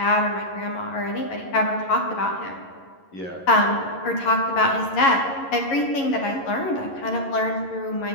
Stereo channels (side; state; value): right; late; 11 ms